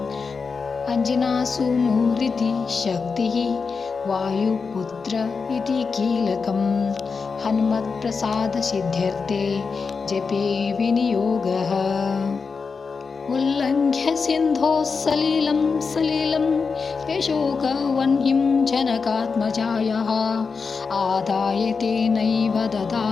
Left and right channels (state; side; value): quieter; right; 5.0 dB